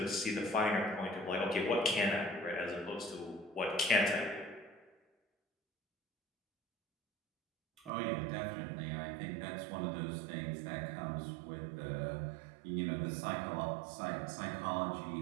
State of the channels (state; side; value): drops out; left; at 7.9 s